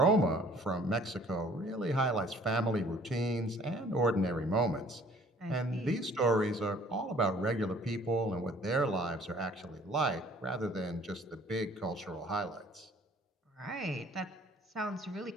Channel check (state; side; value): normal; both; correlation 0.55